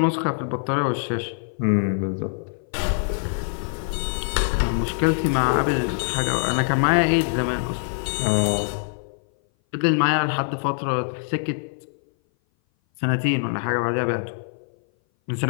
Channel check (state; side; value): silent; right; 59 dB below the other